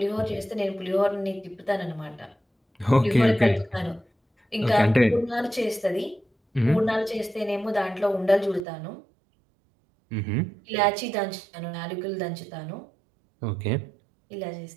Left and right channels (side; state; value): left; drops out; at 8.7 s